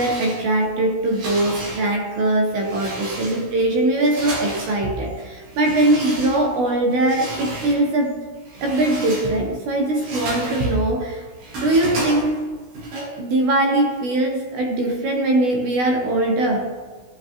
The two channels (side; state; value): left; late; 16 ms